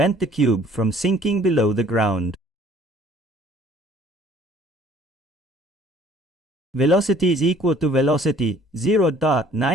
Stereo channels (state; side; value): normal; both; correlation 0.56